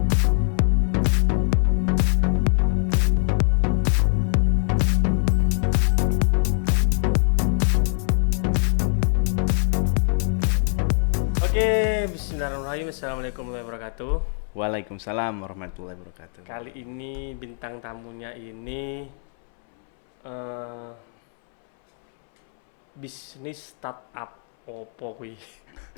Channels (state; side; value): silent; right; 63 dB below the other